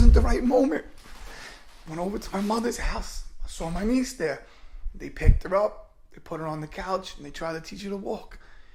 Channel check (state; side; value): identical; both; correlation 1.00